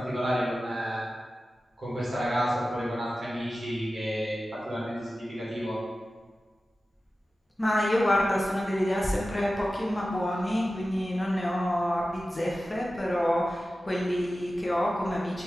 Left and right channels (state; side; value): normal; both; correlation 0.95